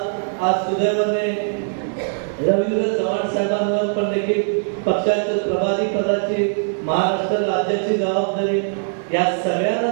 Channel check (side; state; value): left; silent; digital silence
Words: आज सुदैवाने रवींद्र चव्हाण साहेबांवर पण देखील पक्षाच्या प्रभारी पदाची, महाराष्ट्र राज्याची जबाबदारी, या सगळ्यांना